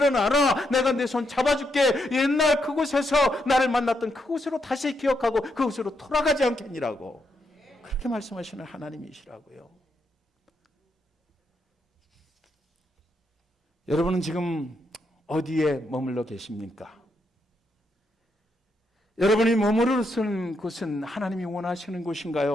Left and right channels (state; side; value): normal; both; correlation 0.80